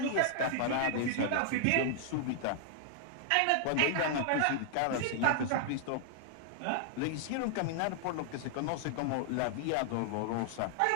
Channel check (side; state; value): both; different; correlation -0.01